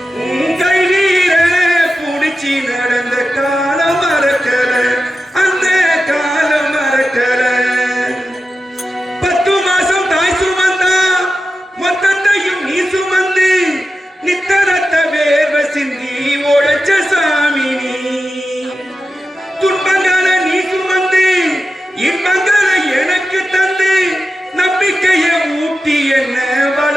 உன் கையில புடிச்சு நடந்த காலம் மறக்கல அந்த காலம் மறக்கல 10 மாசம் தாய் சுமந்தா மொத்தத்தையும் நீ சுமந்து நித்தரத்த வேர்வை சிந்தி உழைச்ச சாமி நீ துன்பங்களை நீ சுமந்து இன்பங்களை எனக்கு தந்து நம்பிக்கையை ஊட்டி என்ன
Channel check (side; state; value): both; normal; correlation 0.91